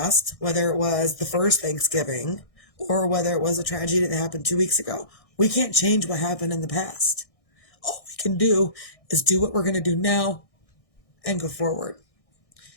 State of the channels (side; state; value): right; late; 1.6 ms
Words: whether it was the first Thanksgiving or whether it was a tragedy that happened 2 weeks ago. We can't change what happened in the past. All we can do is do what we're going to do now and go forward.